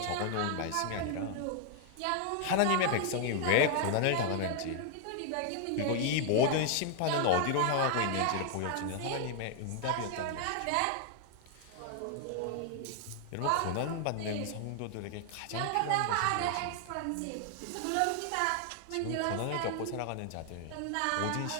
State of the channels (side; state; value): both; different; correlation 0.00